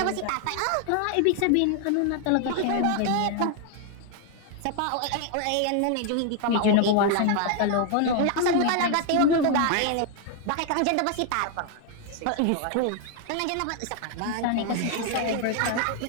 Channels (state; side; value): different; both; correlation 0.00